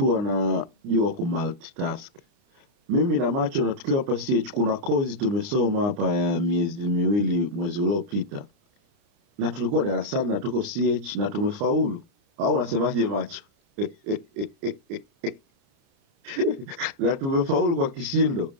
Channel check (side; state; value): left; late; 29 ms